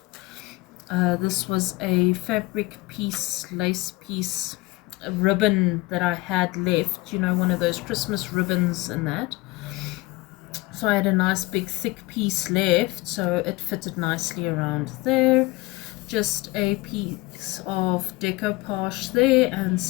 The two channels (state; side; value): quieter; right; 21.6 dB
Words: This was a fabric piece, lace piece, a ribbon that I had left, you know, one of those Christmas ribbons and that. So I had a nice big thick piece left, so it fitted nicely around there. Just a piece of decoupage there and